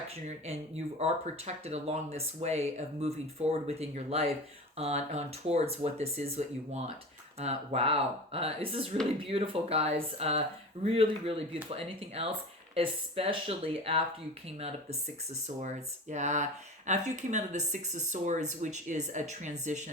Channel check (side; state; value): both; normal; correlation 0.33